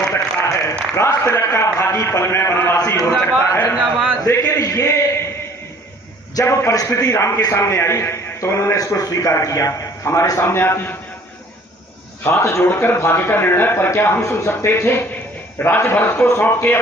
सकता है। राज तिलक का भागी पल में वनवासी हो सकता है। लेकिन ये जब परिस्थिति राम के सामने आई तो उन्होंने इसको स्वीकार किया। हमारे सामने आती हाथ जोड़कर भाग्य का निर्णय पर क्या हम सुन सकते थे। राज भरत को सौंप के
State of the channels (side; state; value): both; normal; correlation 0.54